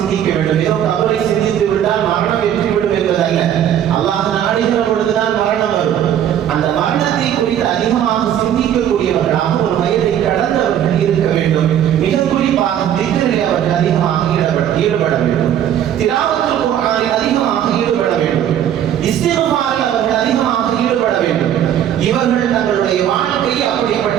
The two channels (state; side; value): quieter; left; 10.3 dB